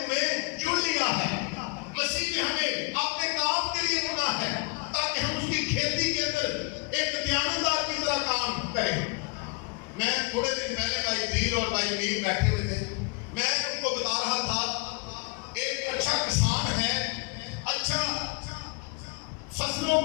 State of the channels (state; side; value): quieter; right; 29.5 dB